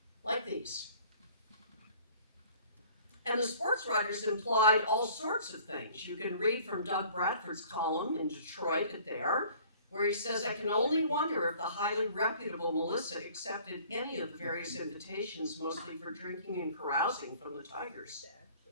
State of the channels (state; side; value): inverted; both; correlation -0.52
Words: like these. And the sports writers implied all sorts of things. You can read from Doug Bradford's column in Detroit at There, where he says, "I can only wonder if the highly reputable Melissa accepted any of the various invitations, mostly for drinking and carousing, from the Tigers."